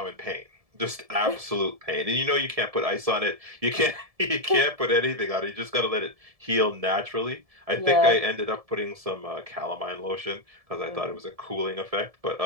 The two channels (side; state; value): left; late; 1.7 ms